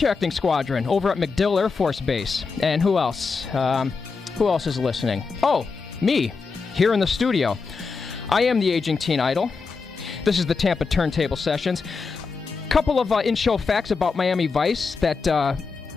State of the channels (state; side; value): quieter; right; 4.7 dB